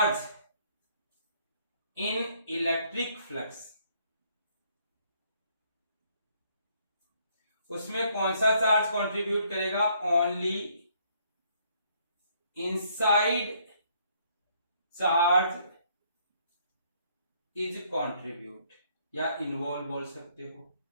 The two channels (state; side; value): inverted; both; correlation -0.66